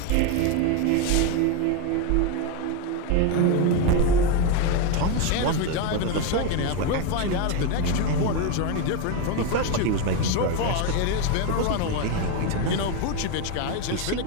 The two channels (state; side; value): different; both; correlation 0.03